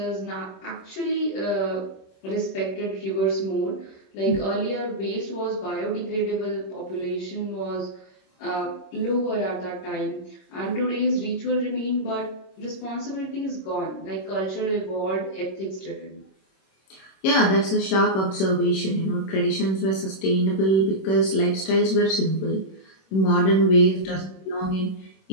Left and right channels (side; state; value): right; late; 26 ms